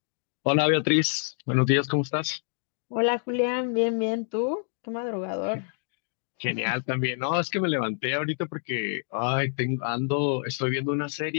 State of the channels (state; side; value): silent; right; 55 dB below the other